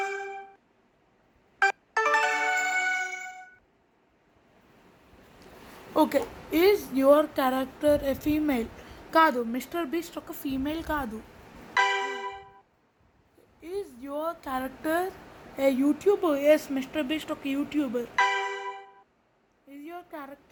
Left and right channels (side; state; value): both; identical; correlation 1.00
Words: Okay, is your character a female? కాదు, మిస్టర్ బీస్ట్ ఒక ఫీమేల్ కాదు. Is your character a YouTuber? Yes, Mr Beast ఒక YouTuber. Is your